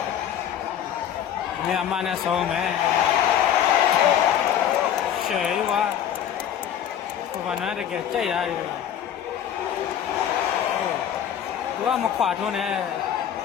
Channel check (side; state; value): right; quieter; 9.8 dB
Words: နေအမနဲ့ဆုံးမယ်ရှယ်ဝါဘာနာတကယ်ကြိုက်ရတယ်သူကမခွာထုံးနဲ့